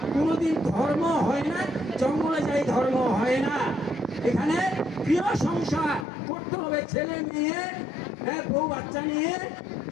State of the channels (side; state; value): right; drops out; at 6.1 s